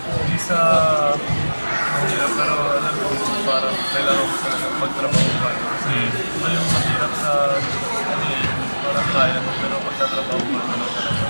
sa mahirap pero alam ko parang kailangan ko talaga magtrabaho pa kasi ito yung mahirap sa ano eh, parang kaya mo pero pagtatrabaho pa naman talaga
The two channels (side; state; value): both; inverted; correlation -1.00